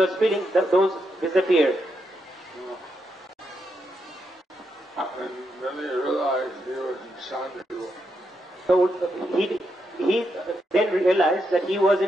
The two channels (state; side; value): normal; both; correlation 0.82